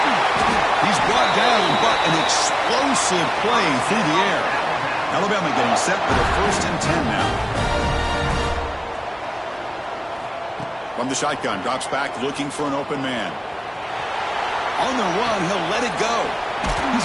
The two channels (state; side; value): identical; both; correlation 1.00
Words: He's brought down, but an explosive play through the air. Alabama getting set for the 1st and 10 now. From the shotgun, drops back, looking for an open man. On the run, he'll let it go. He's